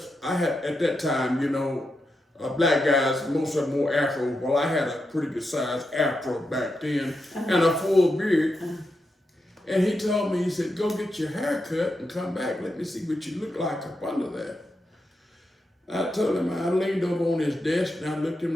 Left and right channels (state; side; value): normal; both; correlation 0.86